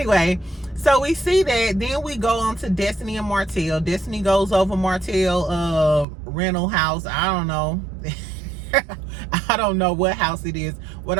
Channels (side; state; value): left; drops out; at 6.1 s